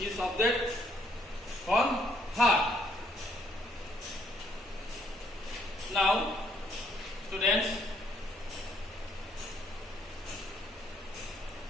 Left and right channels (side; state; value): both; normal; correlation 0.68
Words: subject from her. Now, students,